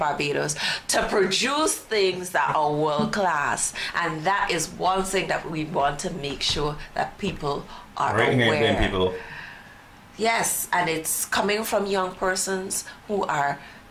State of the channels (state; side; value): identical; both; correlation 1.00